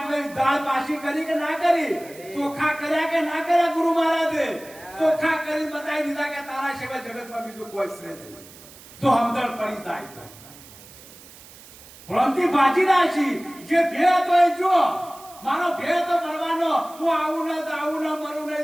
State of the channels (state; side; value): noise; right; hiss, 20 dB below the sound